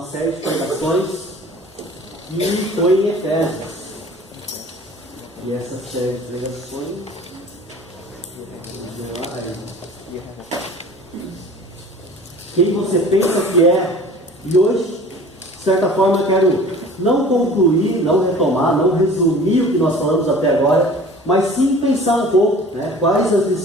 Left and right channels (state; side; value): normal; both; correlation 0.45